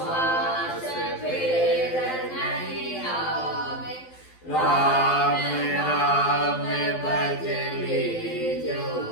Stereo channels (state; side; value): late; right; 12 ms